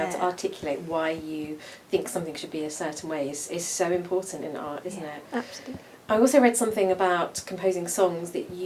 to articulate why you think something should be a certain way is so important in art, isn't it? Absolutely. I also read something about composing songs that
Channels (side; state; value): both; identical; correlation 1.00